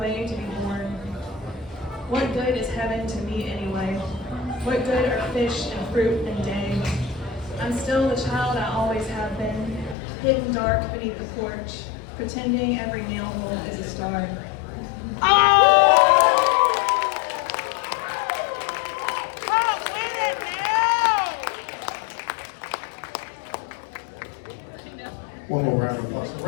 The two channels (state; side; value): drops out; right; at 10.0 s